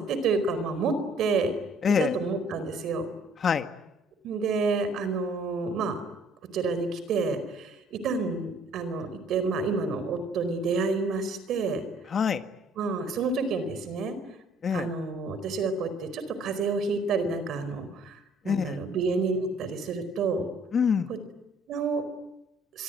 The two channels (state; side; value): normal; both; correlation 0.59